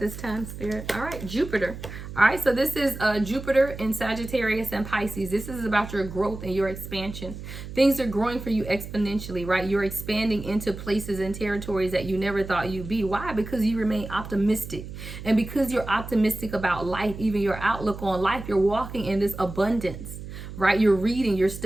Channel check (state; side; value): noise; right; hum, 11 dB below the sound